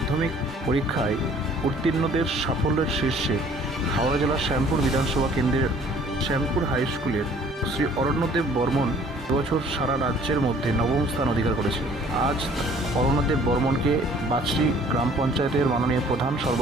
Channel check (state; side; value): normal; both; correlation 0.54